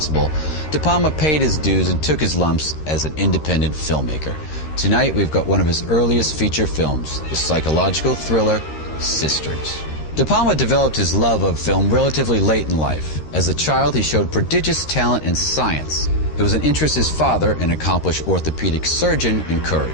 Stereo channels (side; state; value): right; late; 13 ms